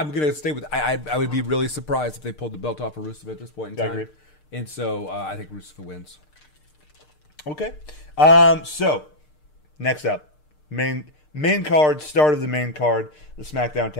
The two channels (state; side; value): late; right; 6.6 ms